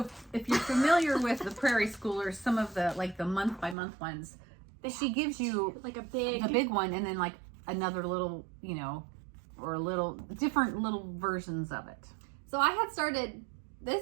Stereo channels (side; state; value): left; drops out; at 3.8 s